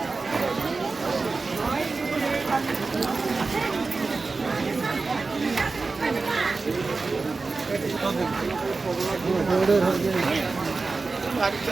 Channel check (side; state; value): left; quieter; 4.0 dB